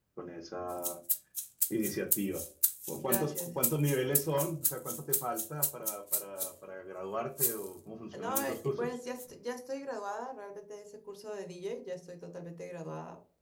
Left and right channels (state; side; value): identical; both; correlation 1.00